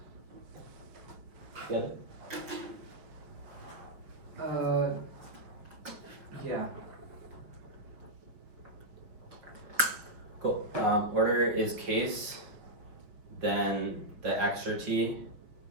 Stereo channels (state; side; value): late; left; 5.4 ms